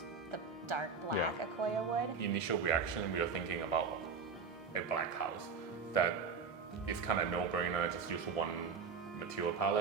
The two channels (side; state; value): left; quieter; 5.3 dB